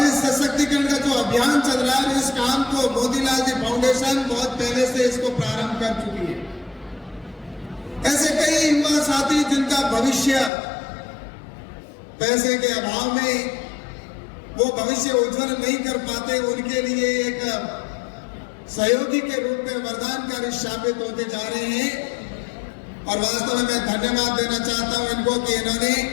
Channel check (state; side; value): drops out; right; at 10.5 s